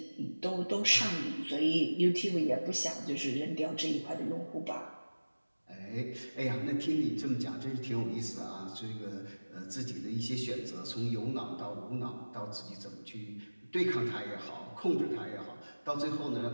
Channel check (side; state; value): both; inverted; correlation -1.00